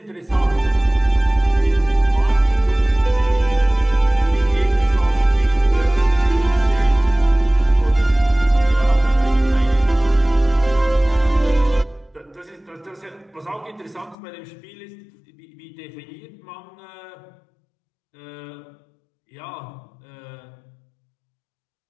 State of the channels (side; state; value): right; drops out; at 14.2 s